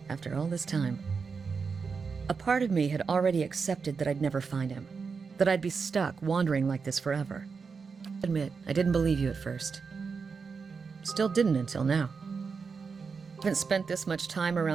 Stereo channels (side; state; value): left; quieter; 5.3 dB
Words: After all this time, a part of me had already accepted that I'd never find him, that I'd be stuck wandering like this forever. Admit, I didn't believe you at first. Still didn't until now. I haven't spent this much time